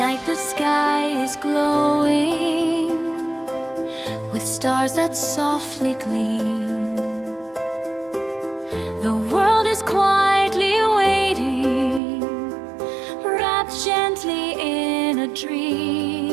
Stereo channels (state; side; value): drops out; left; at 12.0 s